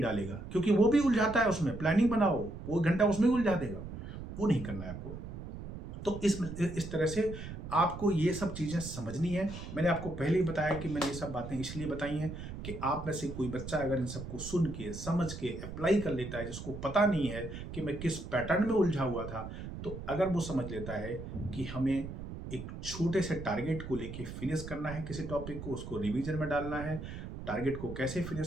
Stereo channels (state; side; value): noise; right; rumble, 9 dB below the sound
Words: डालेगा, क्योंकि वो भी उलझाता है उसमें। प्लानिंग बनाओ, वो 1 घंटा उसमें उलझा देगा, वो नहीं करना है आपको। तो इस तरह से आपको ये सब चीज़ें समझनी है। मैंने आपको पहले ही बताया कि मैंने ये सब बातें इसलिए बताई हैं कि आप में से कोई बच्चा अगर इन सबको सुन के, समझ के अप्लाई कर लेता है, जिसको पता नहीं है कि मैं किस पैटर्न में उलझा हुआ था, तो अगर वो समझ लेता है कि हमें एक छोटे से टारगेट को लेके फिनिश करना है किसी टॉपिक को, उसको रिवीजन में डालना है, टारगेट को कैसे